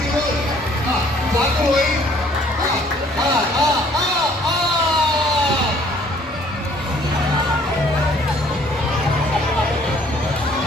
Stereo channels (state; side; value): normal; both; correlation 0.59